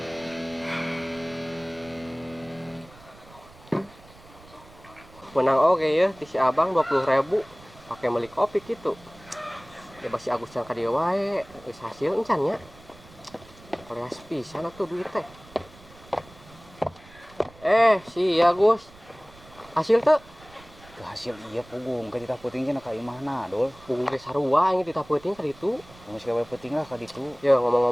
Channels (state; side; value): noise; right; rumble, 23 dB below the sound